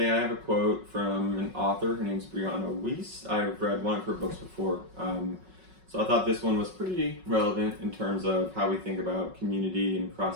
I have a quote from an author. Her name's Brianna Weiss. I've read one of her books before, so I thought this one was pretty relevant in terms of how we think about community and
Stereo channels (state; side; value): late; left; 5.4 ms